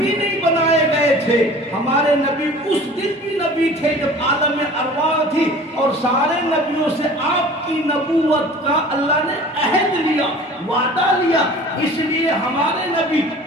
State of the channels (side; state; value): both; normal; correlation 0.44